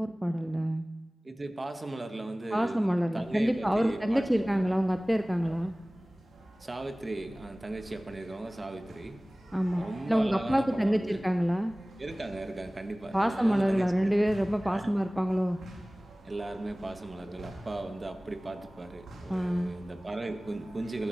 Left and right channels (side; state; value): both; normal; correlation 0.98